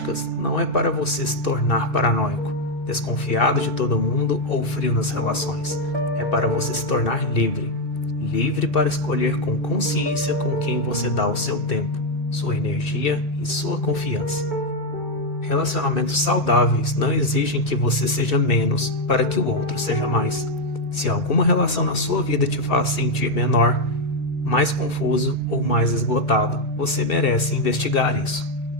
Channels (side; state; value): right; late; 2.6 ms